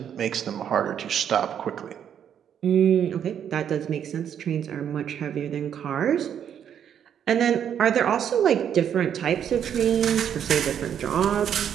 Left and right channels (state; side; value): quieter; left; 8.9 dB